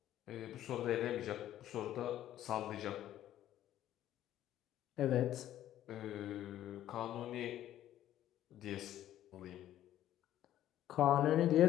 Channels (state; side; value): quieter; right; 12.5 dB